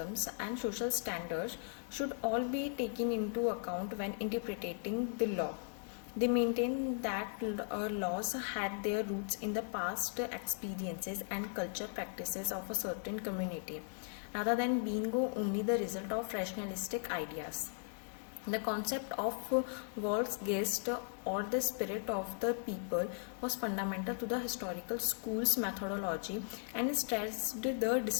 and social standards should all be taken into account when interpreting the law. They maintained that laws had their roots in the past experiences and culture practices of a certain community, rather than being only the result of rationalistic ideas. The concept of Volksgeist, or the spirit of the people, was fundamental to the historical school's methodology and stressed the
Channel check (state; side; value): silent; right; 53 dB below the other